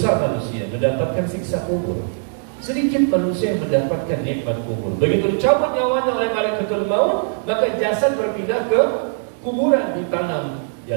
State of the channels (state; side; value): silent; left; digital silence